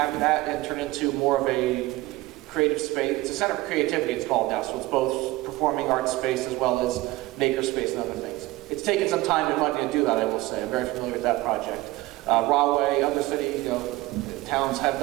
that and turn into more of a creative space. It's a center for creativity, it's called now, so it's both performing arts space as well as maker space and other things. It's taken some time and money to do that, I will say. I'm very familiar with that project. Rahway, other city, towns have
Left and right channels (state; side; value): quieter; left; 19.1 dB